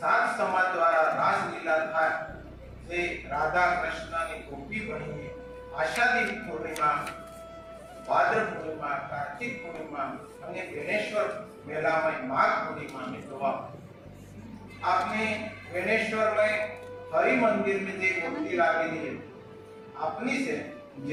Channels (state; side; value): identical; both; correlation 1.00